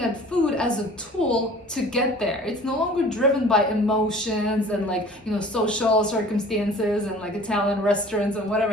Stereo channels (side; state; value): both; normal; correlation 0.46